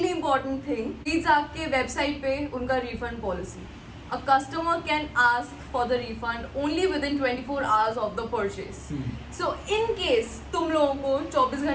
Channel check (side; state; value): both; identical; correlation 1.00